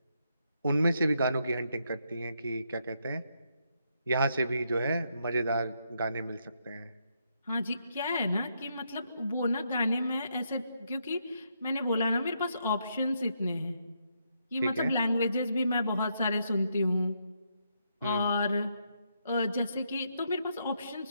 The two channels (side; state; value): both; inverted; correlation -0.78